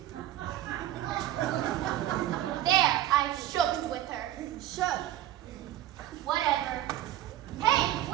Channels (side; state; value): left; quieter; 13.1 dB